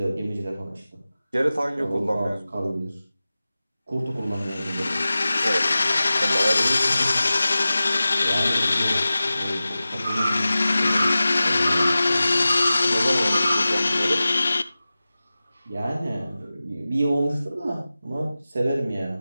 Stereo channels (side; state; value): both; inverted; correlation -0.96